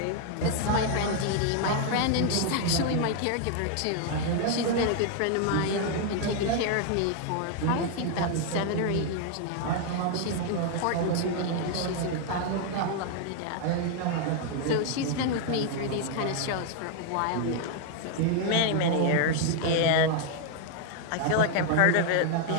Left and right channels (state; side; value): different; both; correlation 0.00